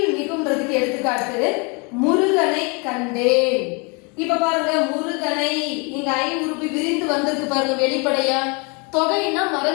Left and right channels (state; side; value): quieter; right; 31.6 dB